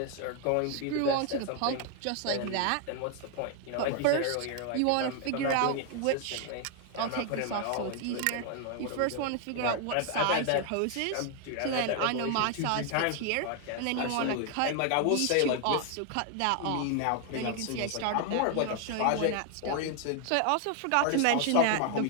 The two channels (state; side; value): different; both; correlation 0.00